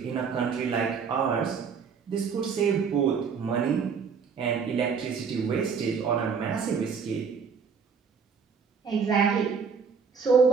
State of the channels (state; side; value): quieter; left; 6.0 dB